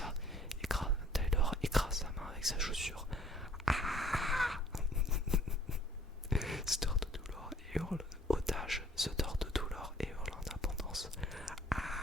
Taylor écrase sa main avec sa chaussure. Ah se tord de douleur et hurle. Otage se tord de douleur et hurle en abondance.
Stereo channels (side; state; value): both; normal; correlation 0.58